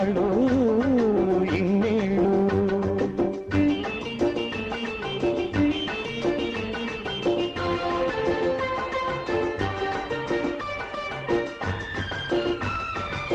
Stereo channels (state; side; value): identical; both; correlation 1.00